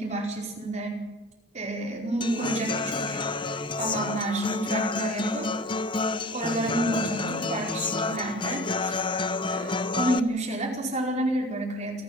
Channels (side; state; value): both; normal; correlation 0.40